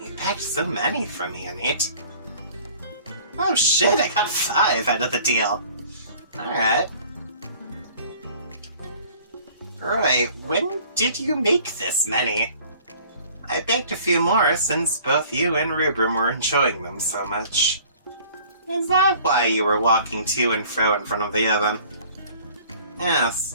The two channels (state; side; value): inverted; both; correlation -0.51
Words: you packed so many for me, Anit. Oh shit, I got 5 out of the deal. Alright. Roy, when did you make this many? I baked a few more since both you and Rubrum were enjoying them so much. Is that why you were walking to and fro in front of the oven?